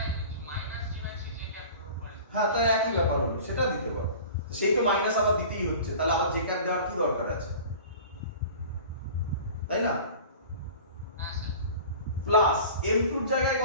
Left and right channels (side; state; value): both; inverted; correlation -0.41